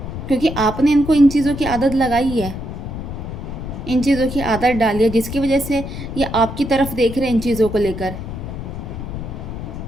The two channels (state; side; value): noise; left; rumble, 8 dB below the sound